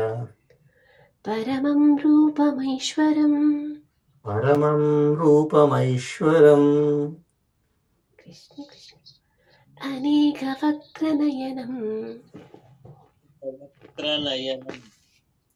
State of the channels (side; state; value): both; identical; correlation 1.00